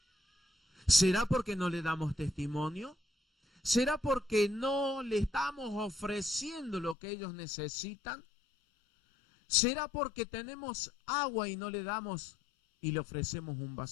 ¿Será porque no le damos testimonio? ¿Será porque no le estamos ofreciendo lo que ellos necesitan? ¿Será porque tenemos agua y no le damos y le ofrecemos un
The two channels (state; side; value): drops out; right; at 7.0 s